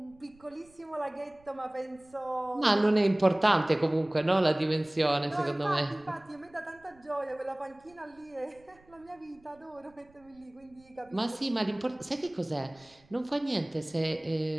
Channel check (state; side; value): noise; right; rumble, 29 dB below the sound